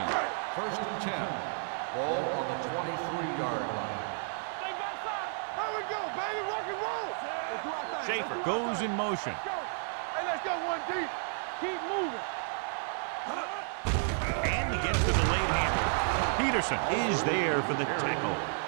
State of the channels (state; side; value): silent; left; 56 dB below the other